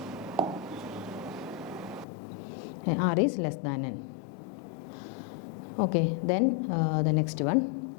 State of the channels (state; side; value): drops out; right; at 2.1 s